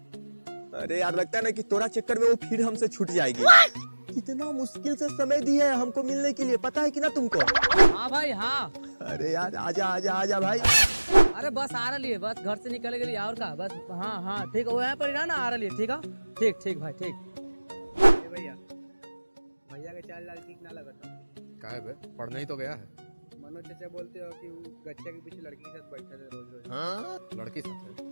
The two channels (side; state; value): both; inverted; correlation -1.00